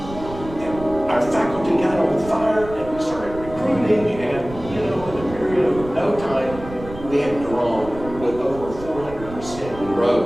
And our faculty got on fire and we started recruiting, and in a period of no time, we had grown with over 400%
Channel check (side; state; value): right; noise; rumble, 13 dB below the sound